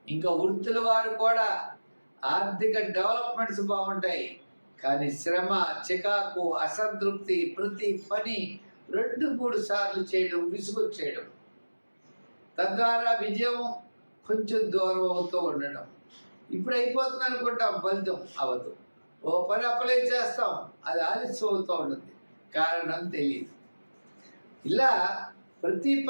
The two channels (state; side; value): inverted; both; correlation -1.00